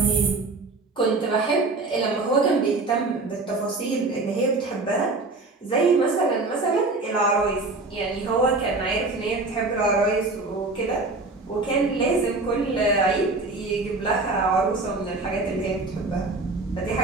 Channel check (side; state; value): left; quieter; 3.4 dB